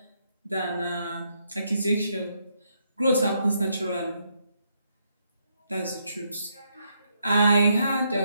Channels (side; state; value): both; inverted; correlation -0.76